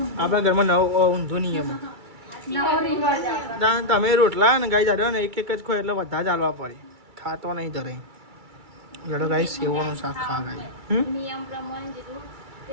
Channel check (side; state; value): left; late; 2.3 ms